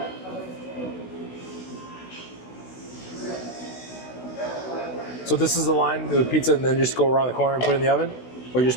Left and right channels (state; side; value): late; right; 16 ms